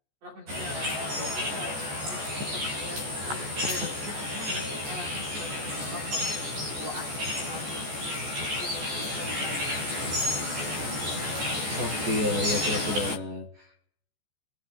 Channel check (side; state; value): left; late; 14 ms